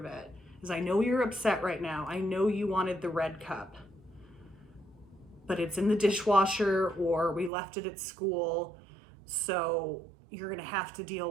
it, is I know you're upset right now. I know you wanted the red cup, but it's in the dishwasher or we left it at school. So you're gonna have to deal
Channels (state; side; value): drops out; left; at 7.5 s